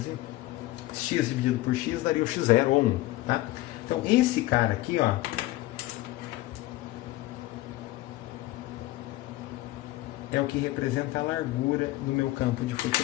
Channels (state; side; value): quieter; right; 17.6 dB